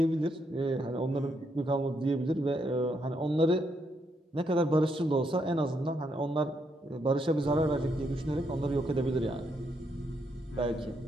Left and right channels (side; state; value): both; normal; correlation 0.77